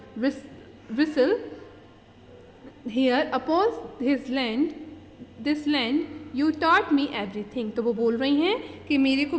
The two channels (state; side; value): identical; both; correlation 1.00